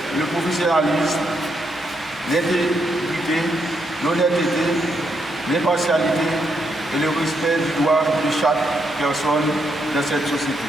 le professionnalisme, l'intégrité, l'honnêteté, l'impartialité et le respect du droit de chaque personne dans cette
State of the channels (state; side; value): normal; both; correlation 0.78